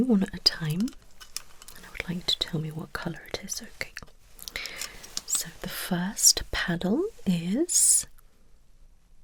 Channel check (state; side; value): identical; both; correlation 1.00